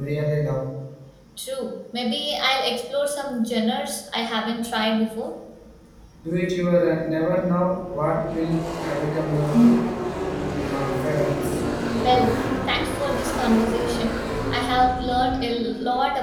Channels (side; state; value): both; identical; correlation 1.00